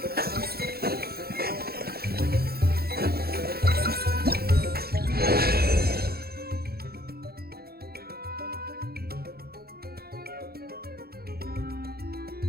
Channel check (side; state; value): left; late; 0.45 ms